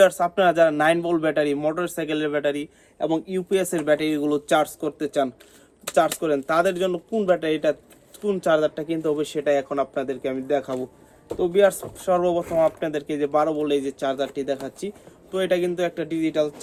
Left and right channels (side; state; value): both; identical; correlation 1.00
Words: আপনারা যারা 9 ভোল্ট ব্যাটারি, মোটরসাইকেলের ব্যাটারি এবং ইউপিএস এর ব্যাটারিগুলো চার্জ করতে চান, চার্জ করেন, তাদের জন্য কোন ব্যাটারিটা, কোন চার্জারটা কিনতে হবে সেটা এখন আপনাদেরকে আমি দেখাবো। তো ভিউয়ার্স, সর্বপ্রথম আপনাদেরকে যে 12 ভোল্ট এই যে চার্জারটি দেখাচ্ছি, তো এটা কিন্তু একটা ডিজিটাল